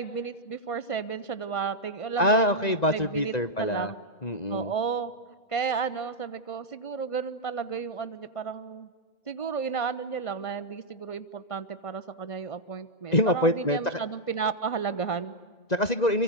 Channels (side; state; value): right; late; 1.9 ms